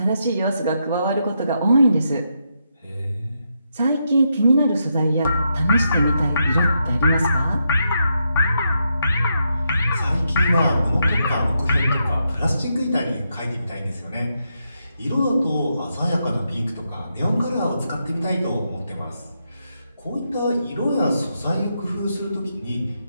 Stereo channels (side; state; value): both; inverted; correlation -0.82